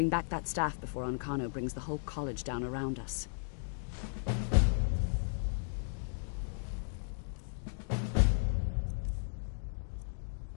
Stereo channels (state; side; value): silent; right; digital silence